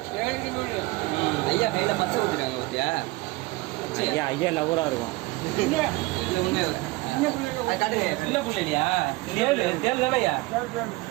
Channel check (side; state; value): left; quieter; 21.6 dB